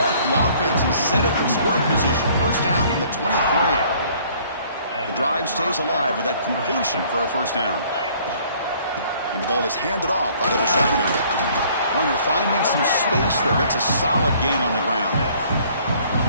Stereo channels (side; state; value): both; inverted; correlation -0.58